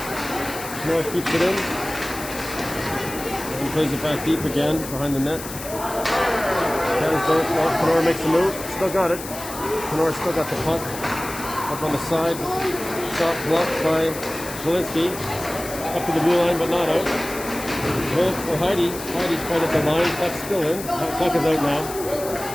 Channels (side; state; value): left; noise; hiss, 11 dB below the sound